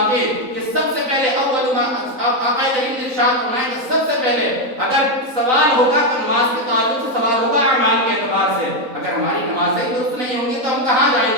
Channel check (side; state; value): left; late; 3.9 ms